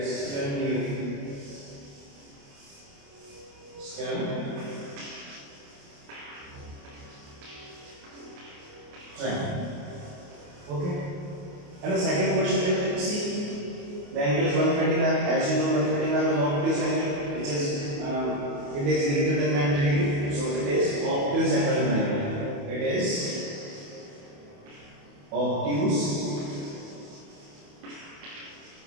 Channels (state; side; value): late; left; 28 ms